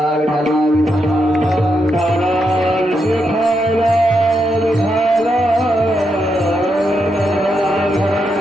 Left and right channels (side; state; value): both; normal; correlation 0.82